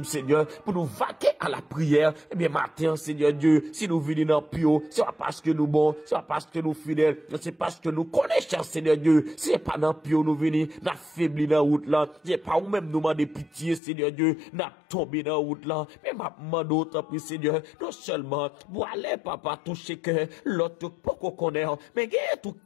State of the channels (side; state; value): right; drops out; at 13.8 s